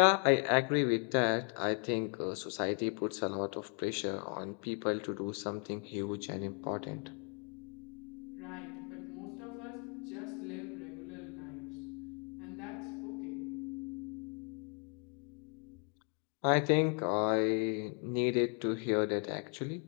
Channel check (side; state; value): right; quieter; 39.1 dB